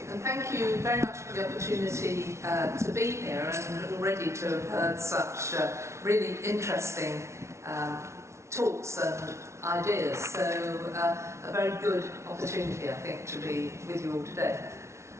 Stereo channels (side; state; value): left; late; 0.13 ms